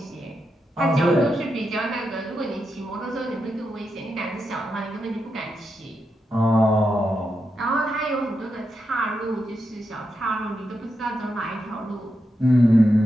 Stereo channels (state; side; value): normal; both; correlation 0.86